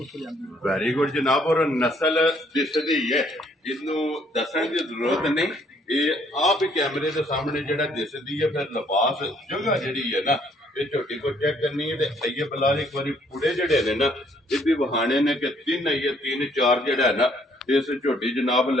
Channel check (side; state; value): both; normal; correlation 0.65